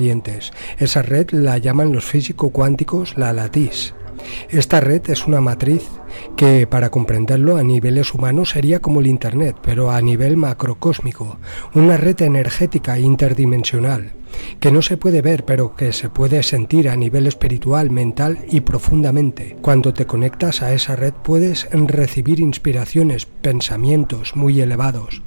Esa red la llaman los físico-cuánticos la lattice. Esta red es una matriz que, para comprenderlo a niveles humanos, sería como el Internet, pero a nivel macrocósmico, una red energética interdimensional, que no se puede ver, pero que se puede sentir a nivel espiritual, mental y profundamente. Cuando te conectas a esa red puedes recibir inspiraciones, pensamientos muy elevados,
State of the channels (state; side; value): inverted; both; correlation -1.00